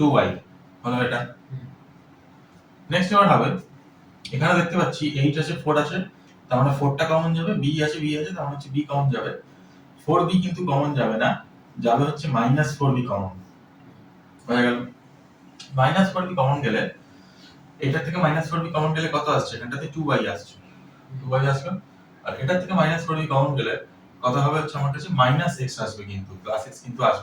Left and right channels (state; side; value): identical; both; correlation 1.00